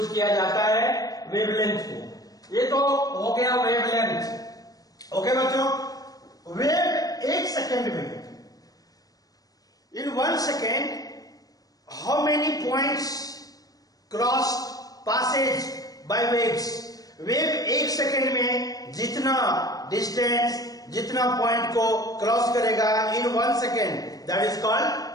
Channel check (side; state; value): right; late; 0.18 ms